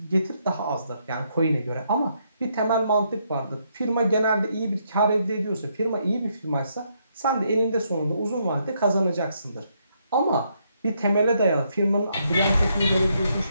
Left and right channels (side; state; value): both; inverted; correlation -0.75